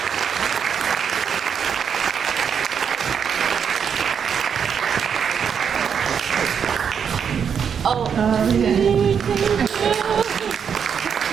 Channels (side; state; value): left; quieter; 7.3 dB